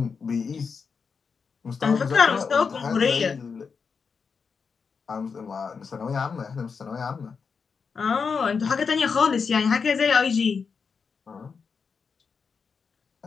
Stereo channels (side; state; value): right; quieter; 5.6 dB